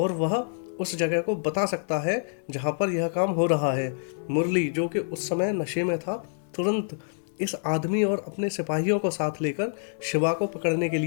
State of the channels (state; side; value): silent; right; digital silence